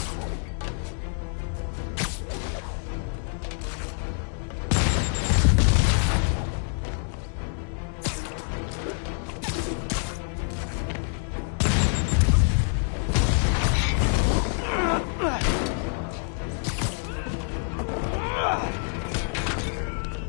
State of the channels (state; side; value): silent; right; 55 dB below the other